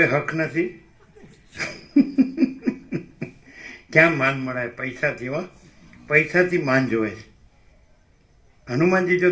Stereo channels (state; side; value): identical; both; correlation 1.00